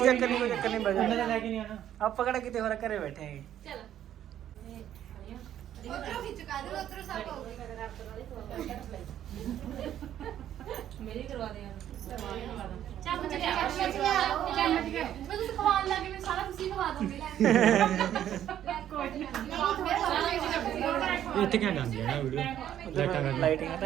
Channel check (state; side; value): quieter; left; 11.0 dB